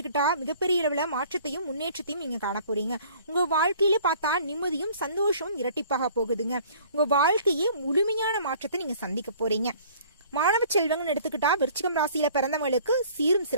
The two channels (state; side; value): inverted; both; correlation -0.52